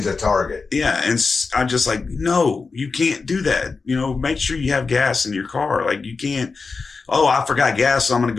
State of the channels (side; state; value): right; quieter; 4.5 dB